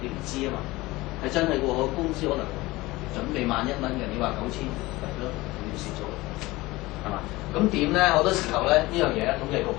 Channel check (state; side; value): quieter; right; 20.2 dB